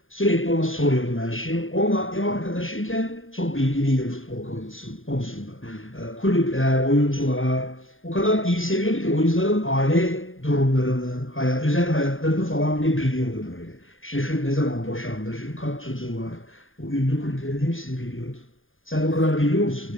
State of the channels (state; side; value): late; right; 0.59 ms